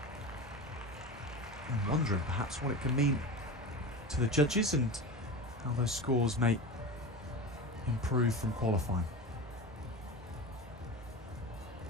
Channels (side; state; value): both; normal; correlation 0.27